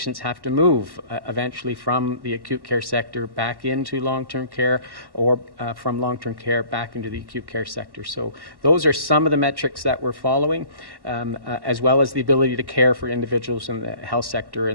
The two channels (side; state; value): left; late; 1.1 ms